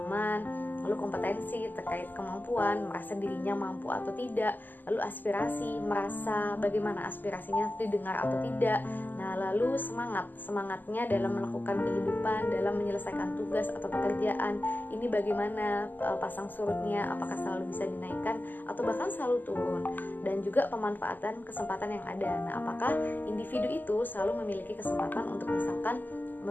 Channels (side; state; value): right; late; 0.087 ms